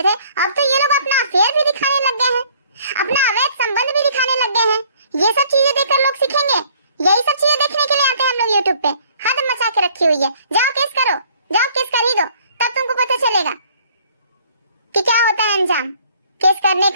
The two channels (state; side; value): inverted; both; correlation -0.58